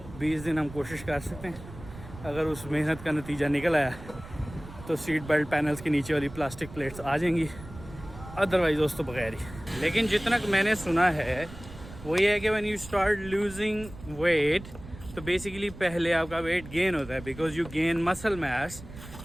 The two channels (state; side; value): noise; right; rumble, 15 dB below the sound